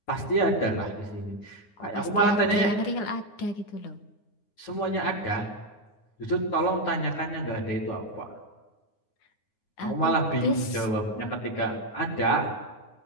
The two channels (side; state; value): right; late; 9.6 ms